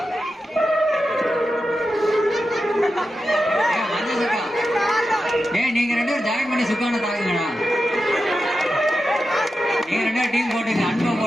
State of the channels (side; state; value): both; normal; correlation 0.90